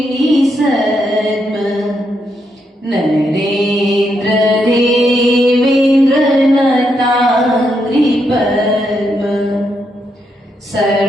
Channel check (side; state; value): both; normal; correlation 0.80